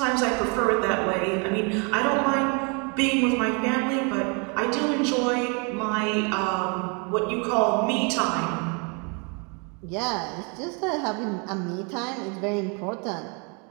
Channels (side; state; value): left; quieter; 34.2 dB